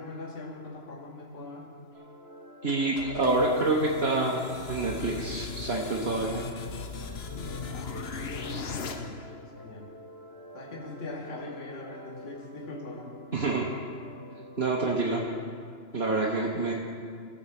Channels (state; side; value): late; right; 2.9 ms